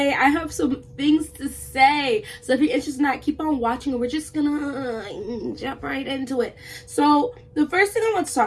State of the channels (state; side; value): identical; both; correlation 1.00